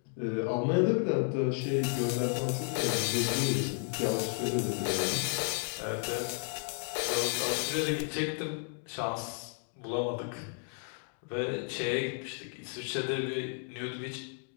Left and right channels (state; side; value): silent; right; 56 dB below the other